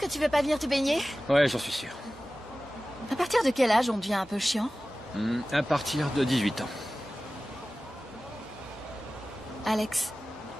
tu veux pas venir te baigner? Ouais, j'en suis sûr. À partir de quel âge on devient un peu chiant? À partir de 18 ans. Alex,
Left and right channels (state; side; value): normal; both; correlation 0.96